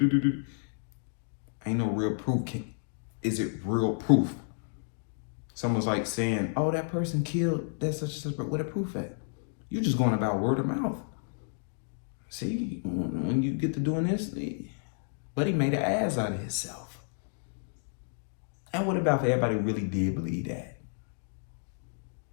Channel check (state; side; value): silent; right; digital silence